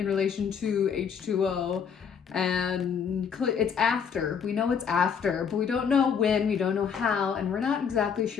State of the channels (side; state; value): right; quieter; 6.9 dB